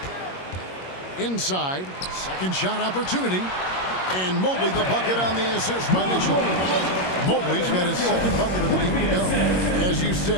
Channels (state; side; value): late; right; 22 ms